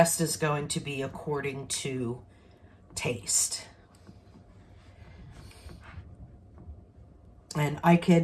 is going to be according to taste. And I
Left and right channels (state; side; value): identical; both; correlation 1.00